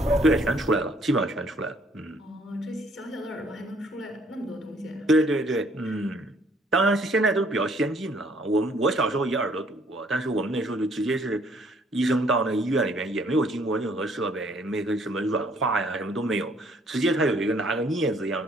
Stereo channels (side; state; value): both; normal; correlation 0.63